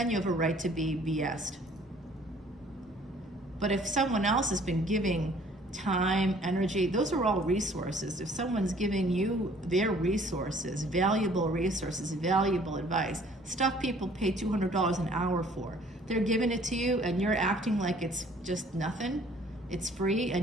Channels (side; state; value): both; normal; correlation 0.56